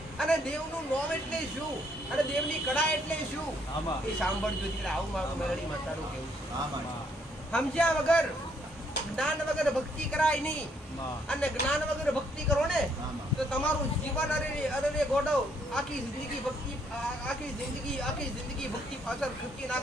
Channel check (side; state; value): both; normal; correlation 0.69